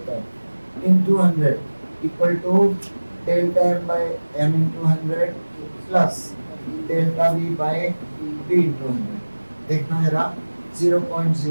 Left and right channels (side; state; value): both; inverted; correlation -1.00